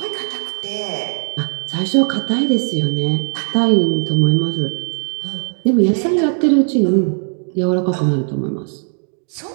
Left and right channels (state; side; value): silent; left; 55 dB below the other